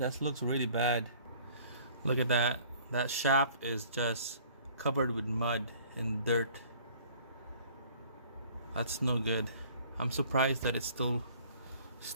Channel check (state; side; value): inverted; both; correlation -0.53